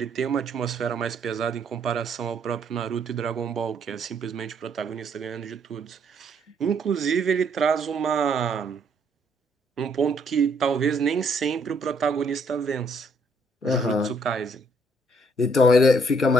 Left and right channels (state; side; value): normal; both; correlation 0.68